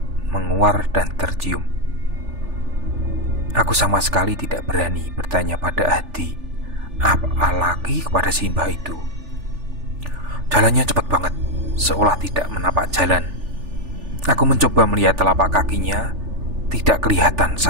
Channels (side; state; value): left; late; 3.4 ms